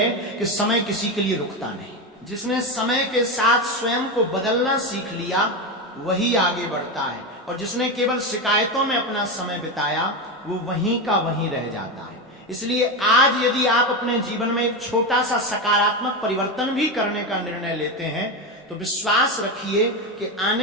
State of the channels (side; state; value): both; normal; correlation 0.15